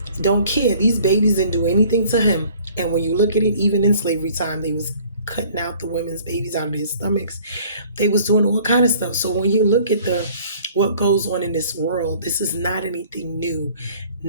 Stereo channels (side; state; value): both; inverted; correlation -0.54